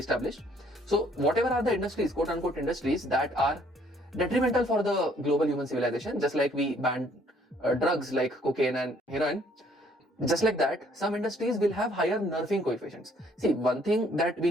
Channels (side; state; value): both; normal; correlation 0.63